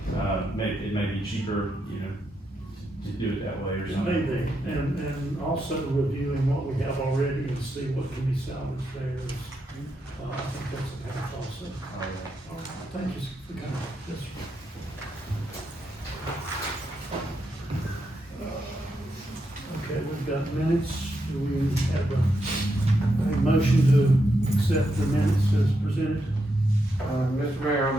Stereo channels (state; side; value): normal; both; correlation 0.82